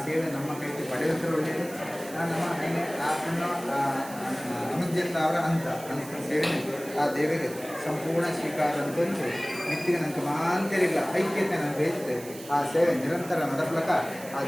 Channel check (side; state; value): right; noise; hiss, 16 dB below the sound